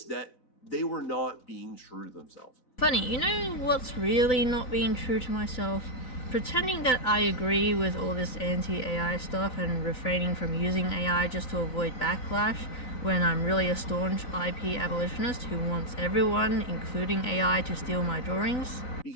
that they were not being true to themselves. Funny, you know what's really not being true to myself? Pretending that I agree with all this anti-AI stuff and refraining from using AI just to avoid backlash when I'm really a staunch IP abolitionist who wants everyone, including AI, to steal my drawings.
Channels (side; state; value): right; late; 4.0 ms